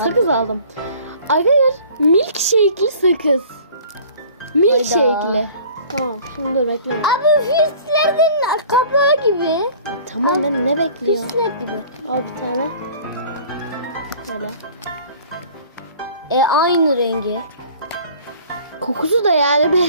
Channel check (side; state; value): both; inverted; correlation -0.48